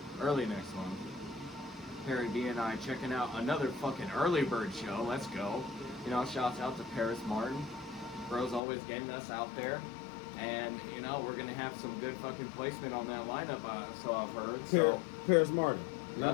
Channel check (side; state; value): right; drops out; at 8.6 s